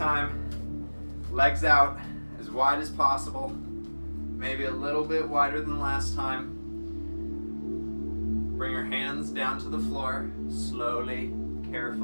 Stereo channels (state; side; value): inverted; both; correlation -1.00